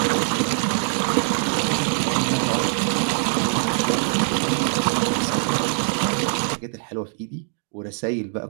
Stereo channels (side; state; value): left; silent; digital silence